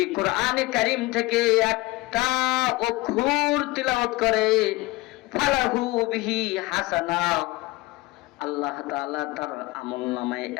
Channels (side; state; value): right; quieter; 20.9 dB